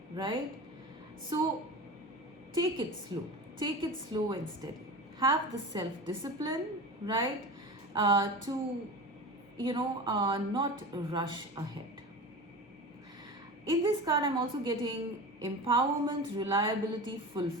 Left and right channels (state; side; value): normal; both; correlation 0.31